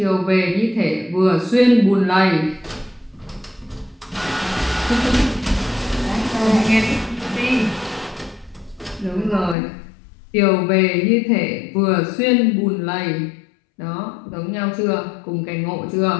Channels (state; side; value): drops out; right; at 9.6 s